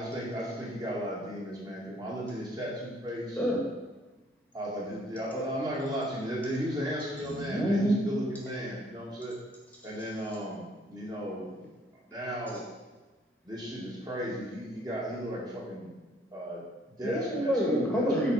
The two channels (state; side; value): normal; both; correlation 0.63